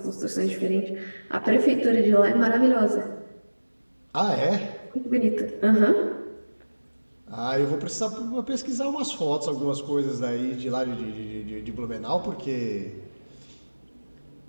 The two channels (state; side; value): inverted; both; correlation -1.00